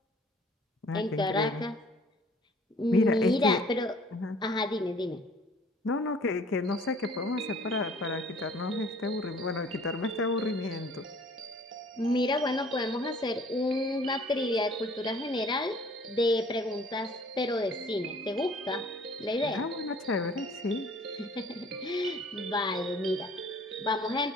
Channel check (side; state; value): both; normal; correlation 0.54